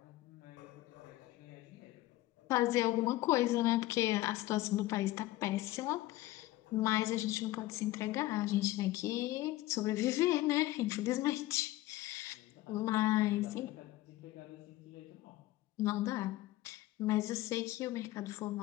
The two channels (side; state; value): right; quieter; 16.9 dB